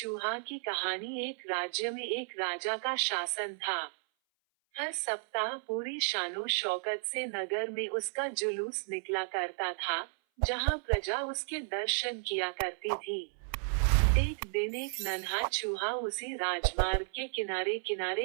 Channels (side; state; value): left; silent; 56 dB below the other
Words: की कहानी। एक राज्य में एक राजा का शासन था। हर सप्ताह पूरी शानो शौकत से नगर में उसका जुलूस निकला करता था, जहां प्रजा उसके दर्शन किया करती थी। एक दिन एक नन्हा चूहा उसी राजमार्ग के किनारे